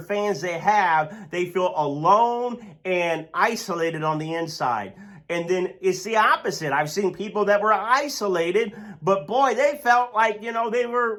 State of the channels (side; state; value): both; identical; correlation 1.00